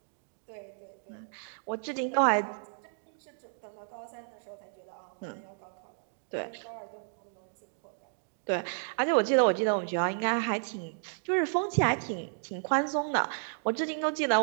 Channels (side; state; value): left; silent; digital silence